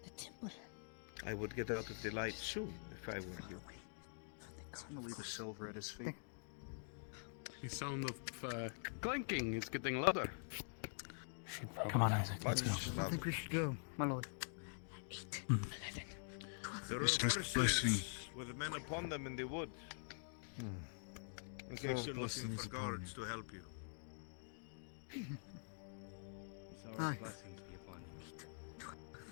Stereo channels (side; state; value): right; silent; digital silence